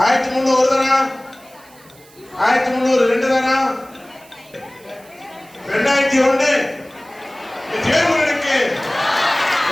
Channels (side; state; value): right; noise; hiss, 26 dB below the sound